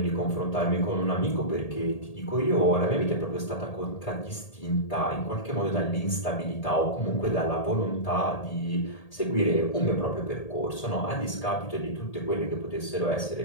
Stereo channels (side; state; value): right; late; 1.8 ms